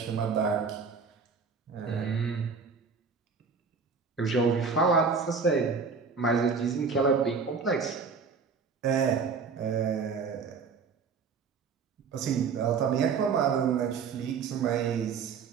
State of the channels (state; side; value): quieter; left; 5.4 dB